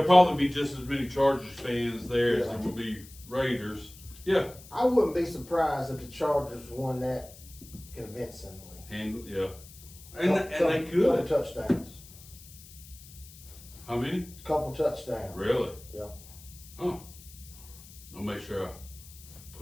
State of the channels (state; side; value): noise; left; hiss, 19 dB below the sound